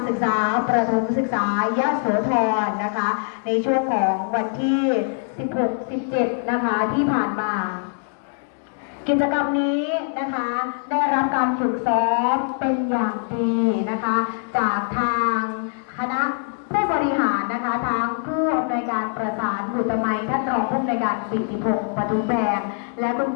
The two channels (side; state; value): right; silent; 59 dB below the other